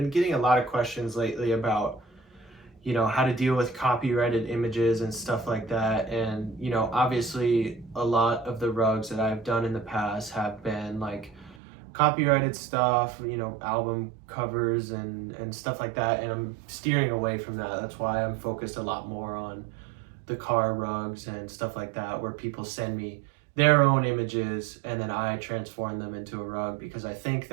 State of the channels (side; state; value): left; drops out; at 11.6 s